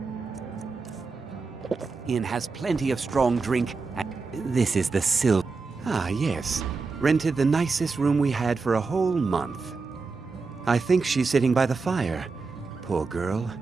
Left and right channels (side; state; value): left; quieter; 4.4 dB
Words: Inn has plenty of strong drink. This is the Ah, yes. Rented the nicest room we had for a whole month. I think she's sitting by the fire. Poor girl.